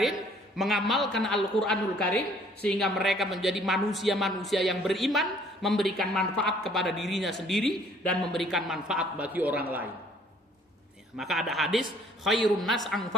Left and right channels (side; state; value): both; normal; correlation 0.59